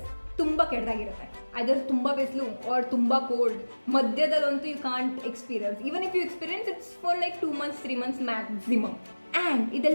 ತುಂಬ ಕೆಟ್ಟದಾಗಿರುತ್ತೆ. ಐದರ್ ತುಂಬ ಬಿಸಿಲು or ತುಂಬ cold. ಮಧ್ಯದಲ್ಲಂತೂ you can't experience. Even if you experience it's for like 2 months 3 months maximum. And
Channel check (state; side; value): inverted; both; correlation -1.00